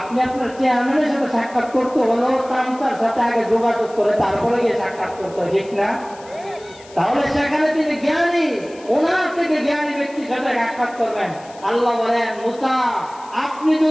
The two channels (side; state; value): left; noise; hiss, 23 dB below the sound